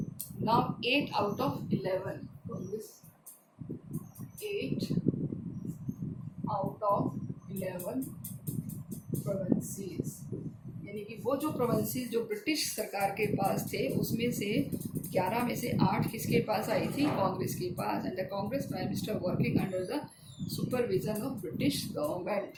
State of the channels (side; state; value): both; identical; correlation 1.00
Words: Now 8 out of 11, Congress 8 out of 11 provinces, यानी कि वो जो प्रोविंसेस जो ब्रिटिश सरकार के पास थे उसमें से 11 में से 8 किसके पास आई थी? कांग्रेस के पास। And the Congress prime minister working under the supervision of British government.